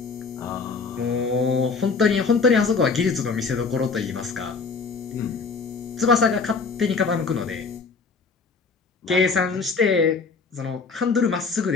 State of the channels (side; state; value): right; quieter; 4.6 dB